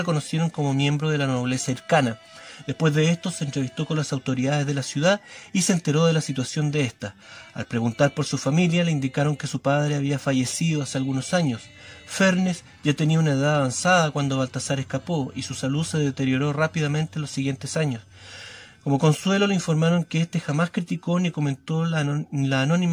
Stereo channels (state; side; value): identical; both; correlation 1.00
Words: como miembro de la nobleza hircana. Después de esto se entrevistó con las autoridades de la ciudad y se enteró de la situación de ésta. Al preguntar por su familia, le indicaron que su padre había fallecido hace algunos años. Fernes ya tenía una edad avanzada cuando Baltasar escapó y su salud se deterioró rápidamente en los siguientes años. Como consuelo le informaron que éste jamás criticó ni comentó la